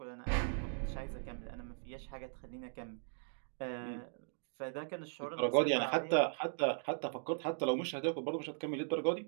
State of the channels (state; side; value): silent; left; digital silence